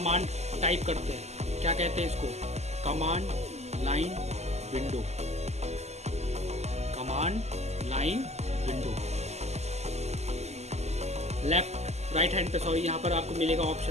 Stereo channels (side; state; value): left; late; 0.32 ms